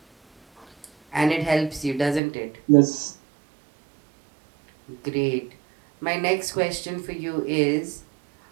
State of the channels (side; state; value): left; drops out; at 2.2 s